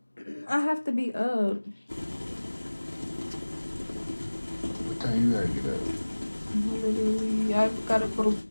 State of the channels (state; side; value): inverted; both; correlation -1.00